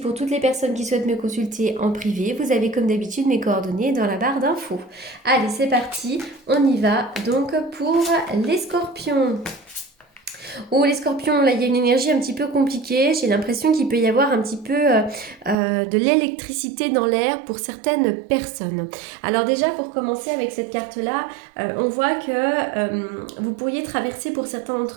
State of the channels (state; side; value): drops out; left; at 15.6 s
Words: toutes les personnes qui souhaitent me consulter en privé, vous avez comme d'habitude mes coordonnées dans la barre d'infos. Allez, c'est parti, on y va donc pour les scorpions. Oh, les scorpions, là, il y a une énergie un petit peu compliquée. J'ai l'impression qu'il peut y avoir un petit peu de l'électricité dans l'air pour certaines personnes. Alors déjà, pour commencer avec cette carte-là, on voit que vous pourriez traverser pour certains